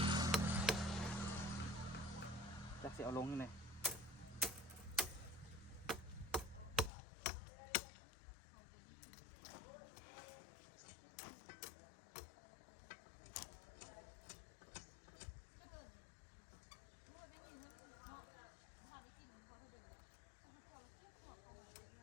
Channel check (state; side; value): drops out; right; at 6.9 s